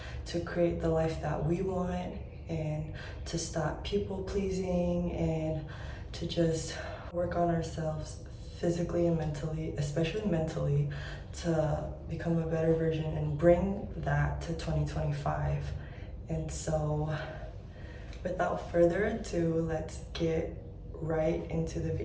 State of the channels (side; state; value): both; identical; correlation 1.00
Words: to create the life that we want, and to stop people pleasing, and to just work on ourselves physically and mentally, especially mentally, to become a better version and bring that to 2025. And so without further ado, let's get right into the